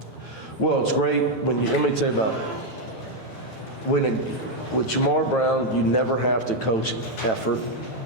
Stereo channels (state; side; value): normal; both; correlation 0.02